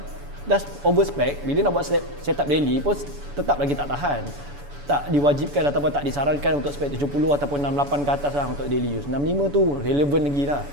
dah over spec. Bila nak buat setup daily pun tetap lagi tak tahan. Tak diwajibkan ataupun tak disarankan untuk spek 70 ataupun 68 ke atas lah untuk daily use. 65 tu relevan lagi lah.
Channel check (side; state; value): left; late; 7.0 ms